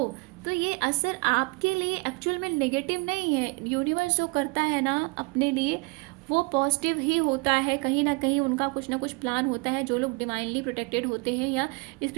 तो ये असर आपके लिए एक्चुअल में नेगेटिव नहीं है। यूनिवर्स जो करता है ना अपने लिए, वो पॉजिटिव ही होता है। कहीं ना कहीं उनका कुछ ना कुछ प्लान होता है। जो लोग डिवाइनली प्रोटेक्टेड होते हैं या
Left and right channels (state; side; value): quieter; left; 28.3 dB